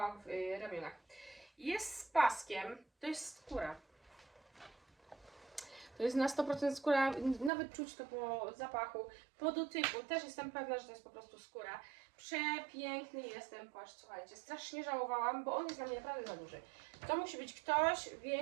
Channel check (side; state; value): left; drops out; at 7.5 s